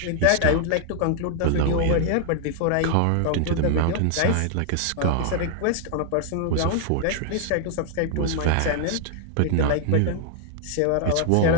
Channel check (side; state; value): both; different; correlation 0.00